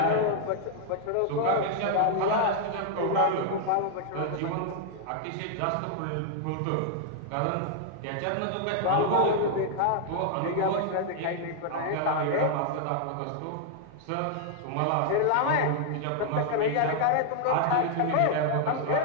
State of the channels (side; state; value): both; different; correlation 0.00